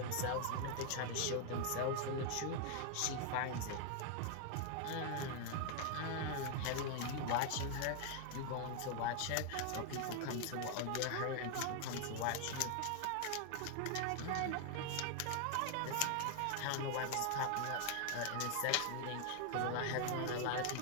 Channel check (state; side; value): different; both; correlation 0.00